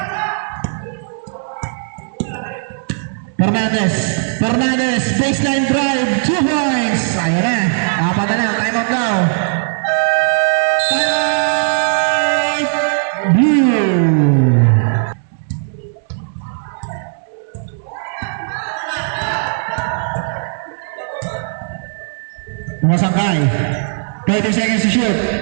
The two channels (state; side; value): silent; left; digital silence